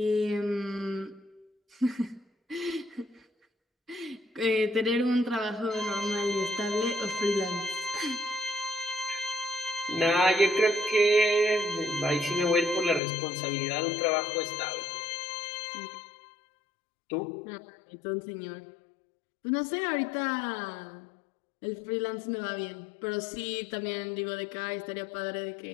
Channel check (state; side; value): drops out; right; at 13.0 s